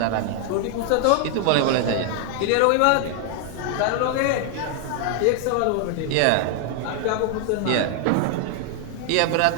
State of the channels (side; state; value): both; different; correlation 0.00